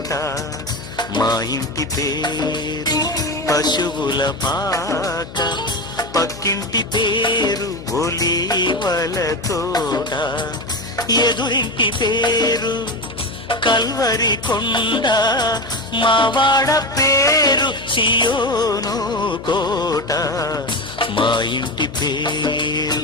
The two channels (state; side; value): noise; left; hum, 15 dB below the sound